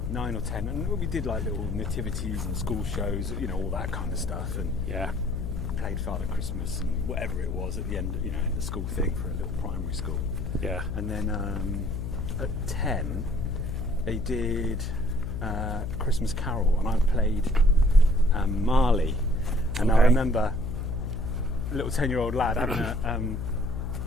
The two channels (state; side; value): noise; left; hum, 4 dB below the sound